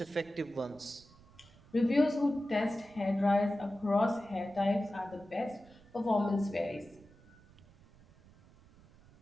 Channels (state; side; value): noise; right; rumble, 25 dB below the sound